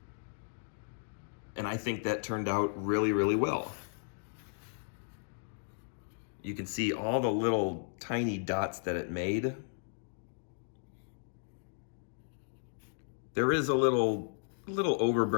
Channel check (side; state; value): right; silent; digital silence